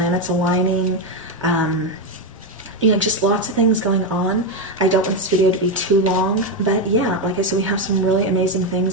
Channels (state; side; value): normal; both; correlation 0.08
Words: aligning, just lots of things going on. I don't want this video to be too long, but yeah, like I said, we have some really amazing